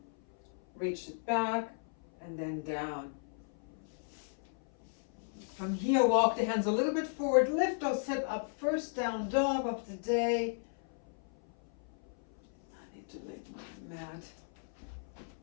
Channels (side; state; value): right; silent; 54 dB below the other